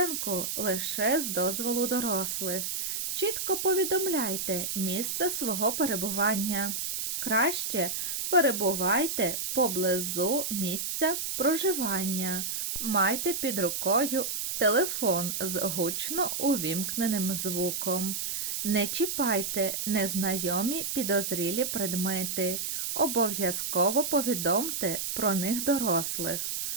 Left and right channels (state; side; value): noise; right; hiss, 2 dB below the sound